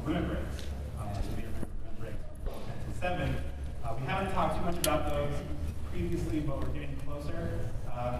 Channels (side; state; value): both; identical; correlation 1.00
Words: limit breaks. So we remember limit breaks on Fantasy XIV. We haven't talked too much about those previously, but we're getting closer.